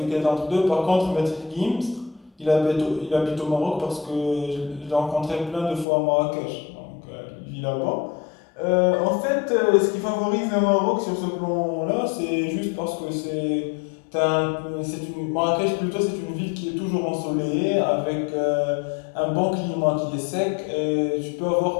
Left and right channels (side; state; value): right; drops out; at 5.9 s